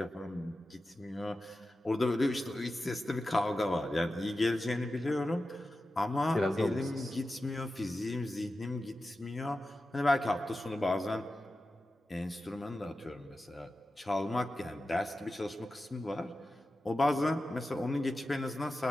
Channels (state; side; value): normal; both; correlation 0.93